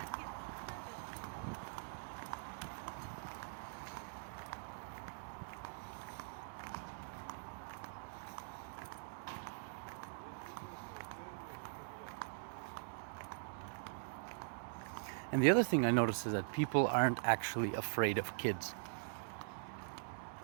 And the other thing I noticed is that people aren't actually afraid of kids.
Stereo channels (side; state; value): left; silent; digital silence